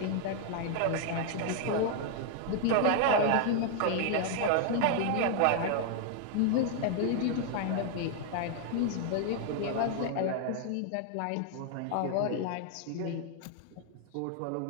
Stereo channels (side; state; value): both; different; correlation 0.00